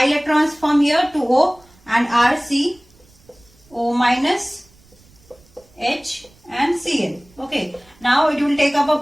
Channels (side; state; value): right; noise; rumble, 29 dB below the sound